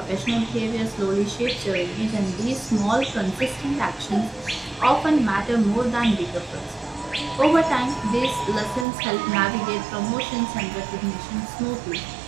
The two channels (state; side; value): drops out; left; at 8.8 s